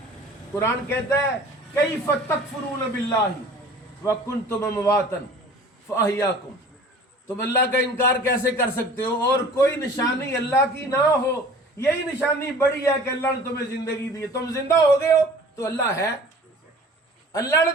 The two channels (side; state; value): both; normal; correlation 0.46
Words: कुरान कहता है कैफ़ तकफुरून बिल्लाहि व कुंतुम अमवातन फअहयाकुम, तुम अल्लाह का इनकार कैसे कर सकते हो और कोई निशानी अल्लाह की ना हो। यही निशानी बड़ी है कि अल्लाह ने तुम्हें जिंदगी दी है, तुम जिंदा हो गए हो तो अल्लाह है। अल्लाह ने